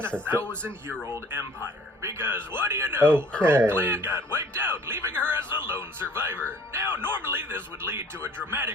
a a sister. 1,000-year-old empire. Because what do you know? Her Okay. whole clan got wiped out, leaving her as the lone survivor. Now, normally this would lead to a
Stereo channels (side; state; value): both; normal; correlation 0.53